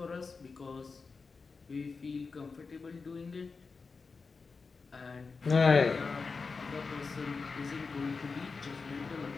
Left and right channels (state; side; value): quieter; right; 4.6 dB